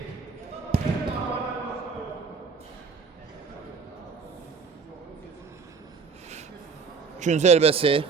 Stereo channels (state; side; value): quieter; left; 5.2 dB